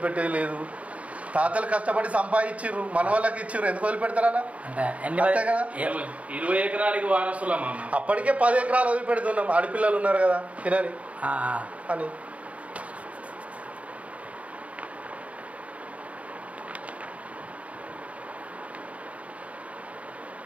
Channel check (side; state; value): left; late; 0.066 ms